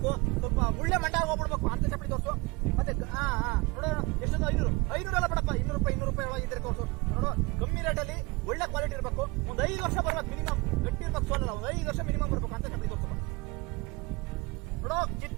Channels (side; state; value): left; quieter; 25.1 dB